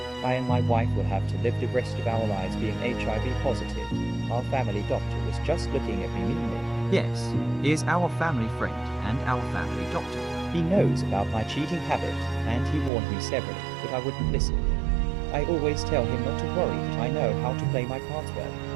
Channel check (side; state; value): left; drops out; at 12.9 s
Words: I and my wife will have to live the rest of our lives being HIV positive. Our family doctor was just looking at me meanly. Yes, he is our family friend and our family doctor. He knows about my cheating habit, and he warned me severally, but I wouldn't listen. I always tell him not to worry, that I know how to play my cards